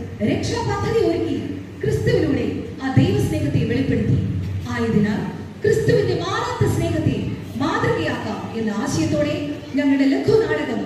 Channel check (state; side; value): identical; both; correlation 1.00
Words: രക്ഷാപദ്ധതി ഒരുക്കി ക്രിസ്തുവിലൂടെ ആ ദൈവസ്നേഹത്തെ വെളിപ്പെടുത്തി. ആയതിനാൽ ക്രിസ്തുവിന്റെ മാറാത്ത സ്നേഹത്തെ മാതൃകയാക്കാം എന്ന ആശയത്തോടെ ഞങ്ങളുടെ ലഘുനാടകം